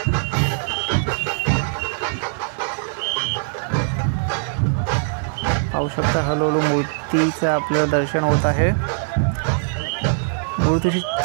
पाहू शकता हळूहळू मूर्तीचं आपल्याला दर्शन होत आहे. मूर्तीची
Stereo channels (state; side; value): silent; left; digital silence